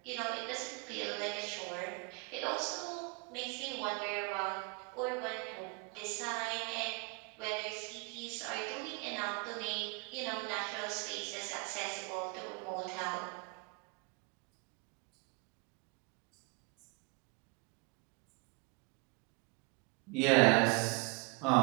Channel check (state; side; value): quieter; left; 30.3 dB